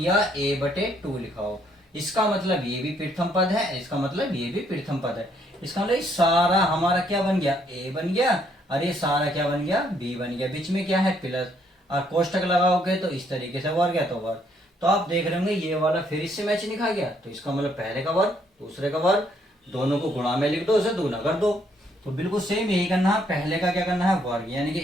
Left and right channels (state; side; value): normal; both; correlation 0.69